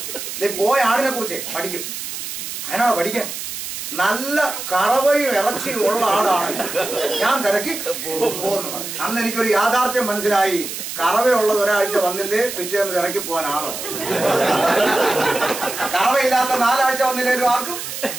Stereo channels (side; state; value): right; noise; hiss, 7 dB below the sound